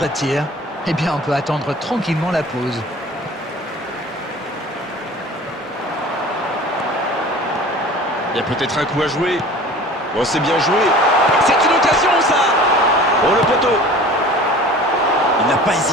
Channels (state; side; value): normal; both; correlation 0.42